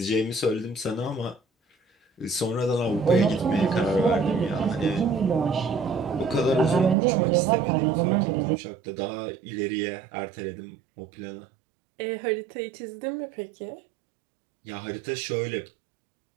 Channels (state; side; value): drops out; left; at 7.0 s